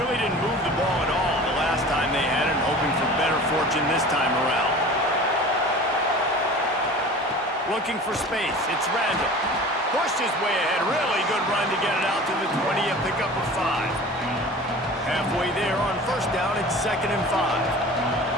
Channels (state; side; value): normal; both; correlation 0.40